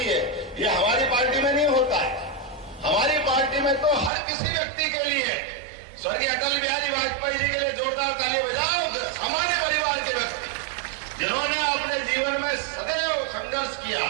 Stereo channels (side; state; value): left; drops out; at 4.1 s